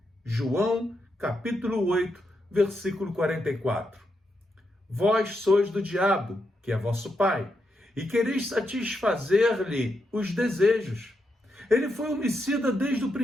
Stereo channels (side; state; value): both; normal; correlation 0.83